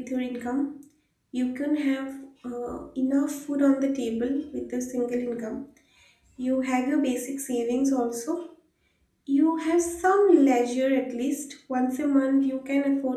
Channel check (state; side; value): identical; both; correlation 1.00